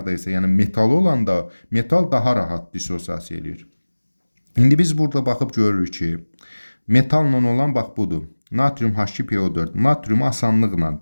isə, yəni metal olanda, metal daha rahat dissosiasiya eləyir. İndi biz burada baxıb görürük ki, metalla olan bax budur. Natrium H2PO4. Natrium asanlıqla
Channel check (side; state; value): both; inverted; correlation -1.00